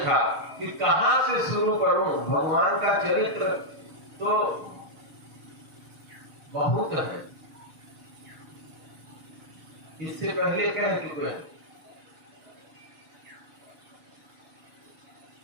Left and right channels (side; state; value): left; late; 6.4 ms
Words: कि कहां से शुरू करूं? भगवान का चरित्र तो बहुत है। इससे पहले कह चुके हैं